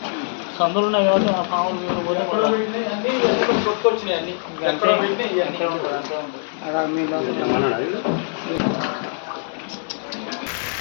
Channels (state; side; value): silent; right; digital silence